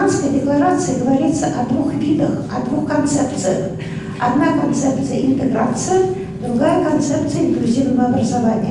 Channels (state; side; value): identical; both; correlation 1.00